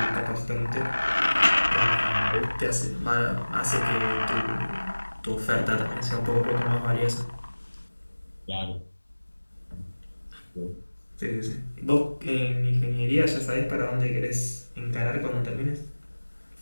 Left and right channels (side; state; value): both; inverted; correlation -1.00